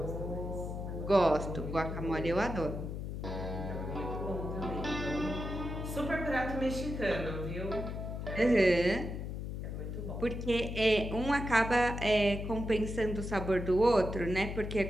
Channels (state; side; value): noise; left; hum, 5 dB below the sound